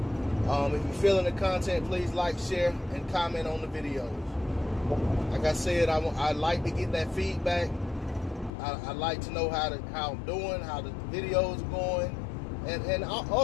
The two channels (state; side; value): drops out; right; at 8.5 s